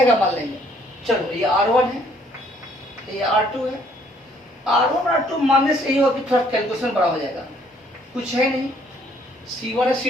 मान लेंगे। चलो ये R1 है, ये R2 है। R1 R2 मानने से यही होगा कि थोड़ा कैलकुलेशन बड़ा हो जाएगा, कुछ है नहीं। C1 है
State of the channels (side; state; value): both; normal; correlation 0.63